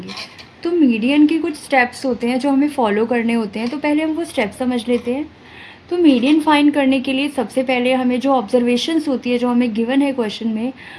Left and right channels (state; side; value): identical; both; correlation 1.00